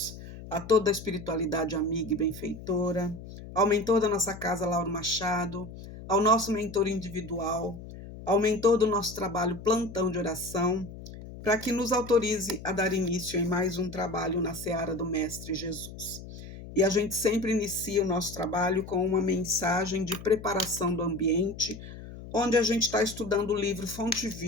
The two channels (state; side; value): noise; left; hum, 13 dB below the sound